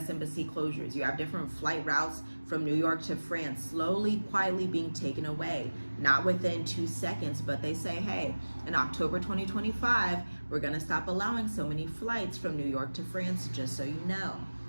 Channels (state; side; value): inverted; both; correlation -1.00